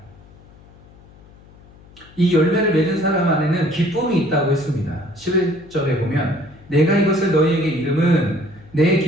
이 열매를 맺은 사람 안에는 기쁨이 있다고 했습니다. 11절에 보면 내가 이것을 너희에게 이름은 내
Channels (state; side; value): noise; left; hum, 24 dB below the sound